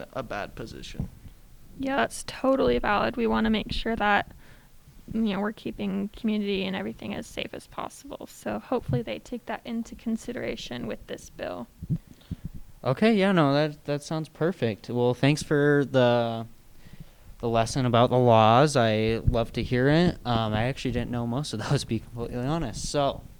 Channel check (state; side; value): identical; both; correlation 1.00